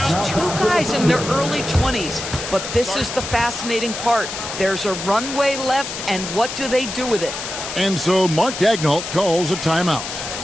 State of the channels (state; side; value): noise; left; hiss, 7 dB below the sound